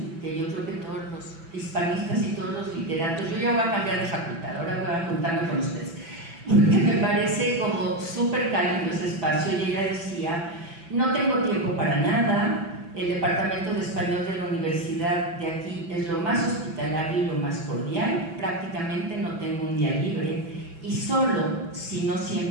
que yo creo que todos los hispanistas y todos los literatos, yo ya voy a cambiar de facultad, ahora voy a juntarme con ustedes, porque me parece como súper cálido ese espacio. Y ella decía No tengo tiempo para nada. El departamento de español de la universidad de aquí es lo más hospitalario y lo más cordial. Prácticamente no tengo un día libre y solo, si no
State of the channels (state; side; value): late; left; 6.0 ms